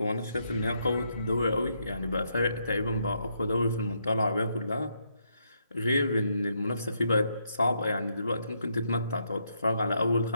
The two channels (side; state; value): both; inverted; correlation -0.77